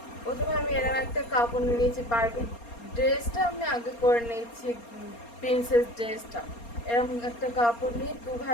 প্রথমে আমি এরকম একটা কাপড় নিয়ে নিয়েছি। বারবি ড্রেসটা আমি আগে করে নিয়েছি, প্রিন্সেস ড্রেসটা। এরকম একটা কাপড় নিয়ে দু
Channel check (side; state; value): right; late; 4.3 ms